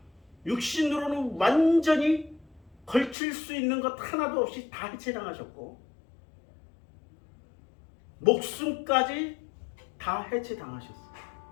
육신으로는 완전히 걸칠 수 있는 것 하나도 없이 다 해체당하셨고, 목숨까지 다 해체당하셨어요.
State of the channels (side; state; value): right; drops out; at 3.2 s